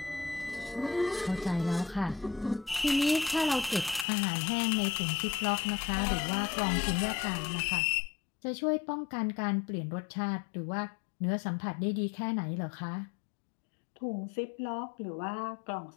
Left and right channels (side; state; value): right; drops out; at 4.0 s